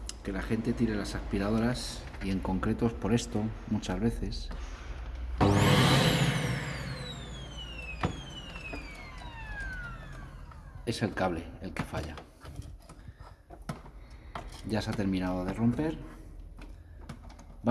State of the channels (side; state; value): both; identical; correlation 1.00